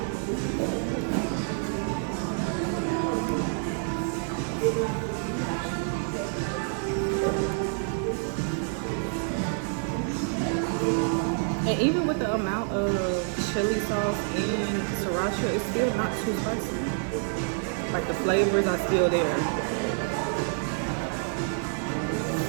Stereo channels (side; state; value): left; silent; 59 dB below the other